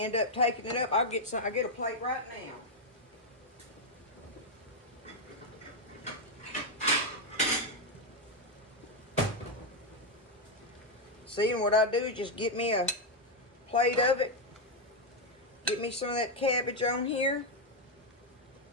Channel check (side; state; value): both; normal; correlation 0.02